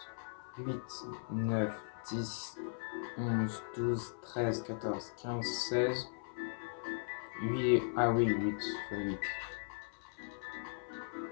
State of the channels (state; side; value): silent; right; 52 dB below the other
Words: 8, 9, 10, 11, 12, 13, 14, 15, 16. 8. Ah oui, 8 fois 8.